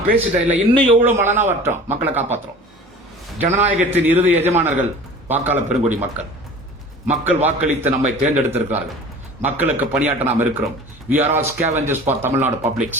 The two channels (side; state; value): both; normal; correlation 0.41